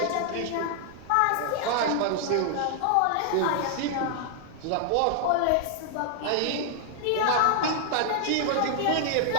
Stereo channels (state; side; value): different; both; correlation 0.00